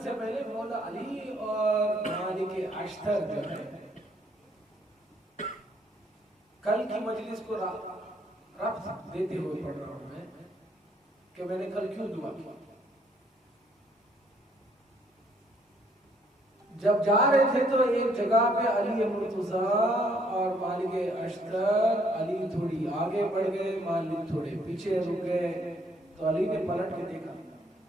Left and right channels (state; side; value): normal; both; correlation 0.66